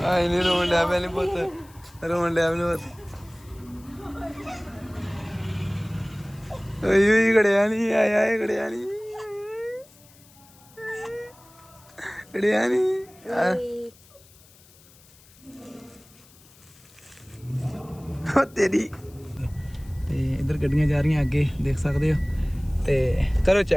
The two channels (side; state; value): left; noise; hiss, 26 dB below the sound